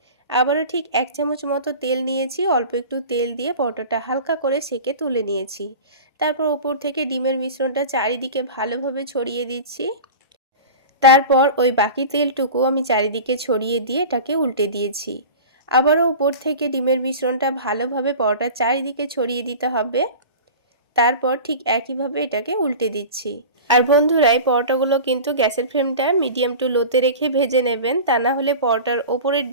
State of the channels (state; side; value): inverted; both; correlation -0.34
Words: আবারও ঠিক 1 চামচ মতো তেল নিয়েছি, অল্প একটু তেল দিয়ে পরোটাটা হালকা করে সেঁকে তুলে নিয়েছি। তারপর ওপর থেকে ডিমের মিশ্রণটা চারিদিকে ভালোভাবে ছড়িয়ে দিচ্ছি। তারপর ওই বাকি তেলটুকু আমি চারিদিকে ছড়িয়ে দিয়ে এটাকে উল্টে দিয়েছি। আবারও ওপর থেকে ডিমের মিশ্রণটা ভালোভাবে পরোটার চারিদিকে ছড়িয়ে দিতে হবে। তারপর ঠিক একইভাবে এটাকে উল্টে দিচ্ছি। আর বন্ধুরা এই পরোটাগুলো কিন্তু গ্যাসের ফ্লেমটা মিডিয়াম টু লোতে রেখে ভেজে নেবেন, তা না হলে পরোটার ওপরের